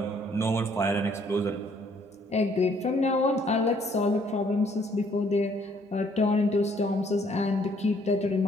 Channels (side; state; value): both; normal; correlation 0.64